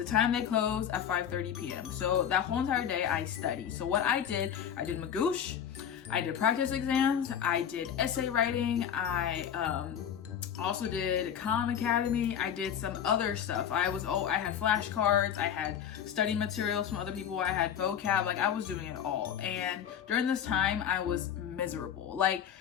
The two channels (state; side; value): quieter; right; 9.0 dB